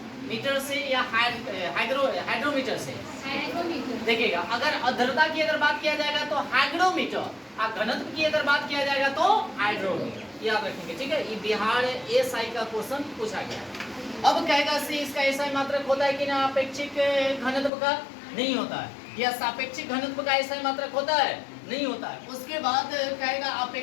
से या हाइड्रोमीटर से। देखिएगा, अगर आर्द्रता की अगर बात किया जाएगा तो हाइग्रोमीटर, और घनत्व की अगर बात किया जाएगा तो हाइड्रोमीटर, याद रखेंगे, ठीक है। ये बिहार एसआई का क्वेश्चन पूछा गया है। अब कहेगा से इसका ऐसा ही मात्रक होता है कि ना अपेक्षिक घनत्व का? नहीं होता है। या सापेक्षिक घनत्व का ऐसा ही मात्रक होता है? नहीं होता है। उसके बाद कहेगा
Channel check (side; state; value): right; drops out; at 17.7 s